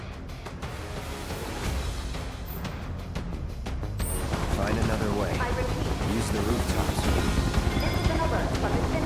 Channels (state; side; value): identical; both; correlation 1.00